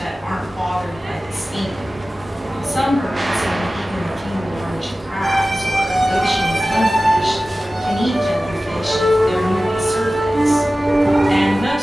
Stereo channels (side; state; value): both; normal; correlation 0.96